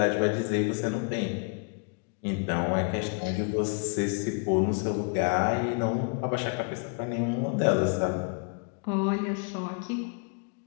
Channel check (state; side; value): quieter; right; 39.6 dB